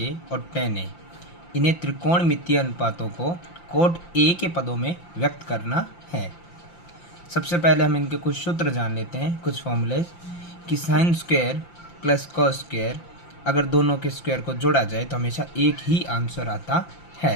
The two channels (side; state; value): right; late; 5.8 ms